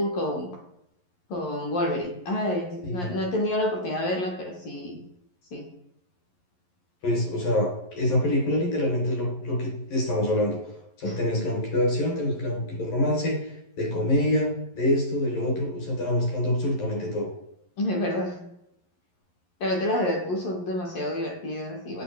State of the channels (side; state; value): right; late; 11 ms